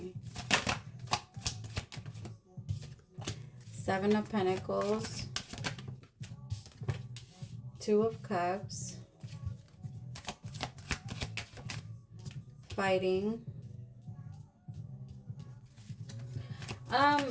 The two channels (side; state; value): both; identical; correlation 1.00